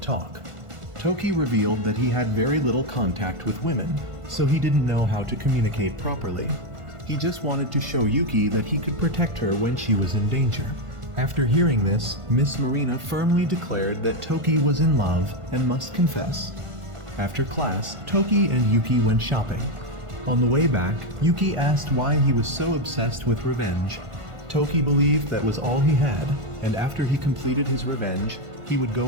Toki revealed that he had very little contact with women, so he didn't know how to communicate properly. He just wanted to show Yuki that he could protect her when she was in danger. After hearing this, Miss Marina firmly declared that Toki was in love and must confess. After class, Toki and Yuki went shopping. On the way back, Yuki asked why he was so obsessed with revenge. Toki believed that was all he had, and after he completed his revenge, he would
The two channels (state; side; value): late; left; 1.5 ms